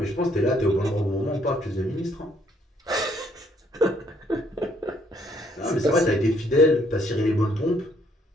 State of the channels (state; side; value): normal; both; correlation 0.67